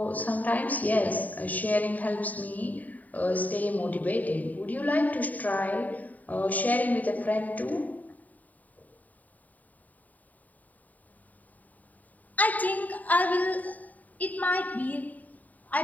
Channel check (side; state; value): right; late; 0.076 ms